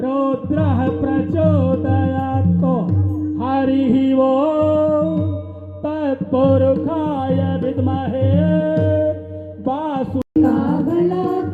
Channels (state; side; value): identical; both; correlation 1.00